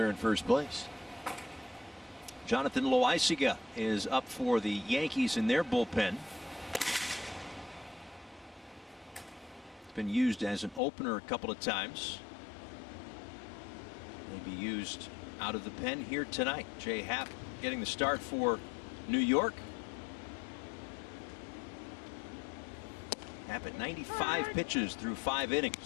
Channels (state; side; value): drops out; right; at 10.8 s